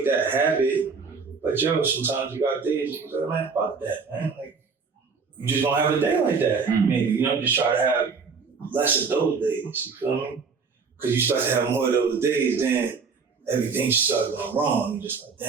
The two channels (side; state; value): left; quieter; 5.1 dB